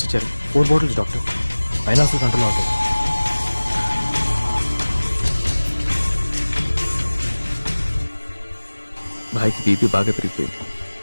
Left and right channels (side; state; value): both; inverted; correlation -1.00